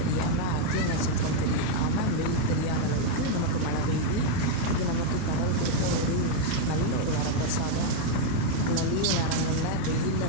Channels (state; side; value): different; both; correlation 0.00